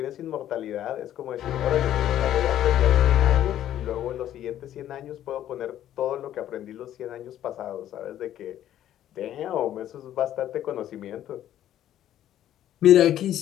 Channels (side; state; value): right; quieter; 11.8 dB